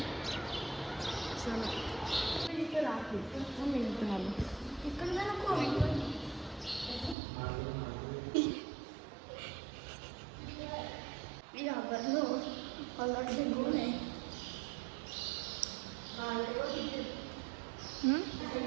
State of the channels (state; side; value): drops out; left; at 7.2 s